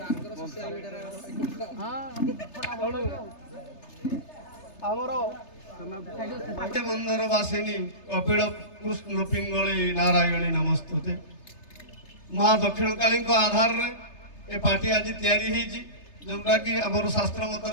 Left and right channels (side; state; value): right; late; 3.3 ms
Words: ଆମର ମନ୍ଦିର ବାସିନୀ କପିଳ କୃଷ୍ଣ ପିଙ୍ଗଳି ନାରାୟଣୀ ନମସ୍ତୁତେ। ମା ଦକ୍ଷିଣକାଳୀଙ୍କ ଆଧାରରେ ଏ ପାର୍ଟି ଆଜି ତିଆରି ହେଇଛି ଯୋଉଟା କି ଆମର ଶାସ୍ତ୍ର